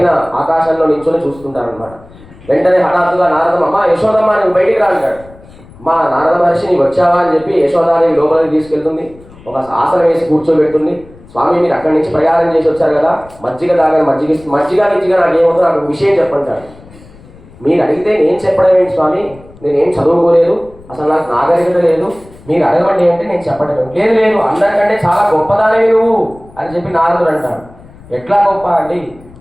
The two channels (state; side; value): noise; left; rumble, 23 dB below the sound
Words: ఆకాశంలో నించుని చూస్తుంటారనమాట. వెంటనే హఠాత్తుగా నారదమ్మ, అమ్మ యశోదమ్మ నువ్వు బయటికి రా అంటాడు. మా నారద మహర్షి నీకు వచ్చావా అని చెప్పి యశోదాదేవి లోపలికి తీసుకెళ్తుంది. ఒక ఆసనం వేసి కూర్చోబెడుతుంది. స్వామి మీరు అక్కడి నుంచి ప్రయాణం చేసి వచ్చారు కదా, మజ్జిగ తాగని మజ్జిగ నాకేమవుతుందో నాకు విషయం చెప్పంటాడు. మీరు అడిగితే నేను చెప్పడం ఏంటి స్వామి, నేనేం చదువుకోలేదు, అసలు నాకు నాగరికత లేదు, మీరు అడగండి అంటే నేను చెప్పడం లేదు. లేదు అందరికంటే చాలా గొప్పదానివి నువ్వు అని చెప్పి నారదుడు అంటాడు. ఎట్లా గొప్ప అండి,